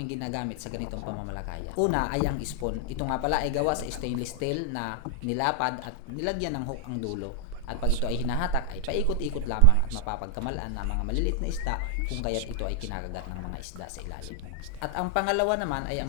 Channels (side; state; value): both; different; correlation 0.00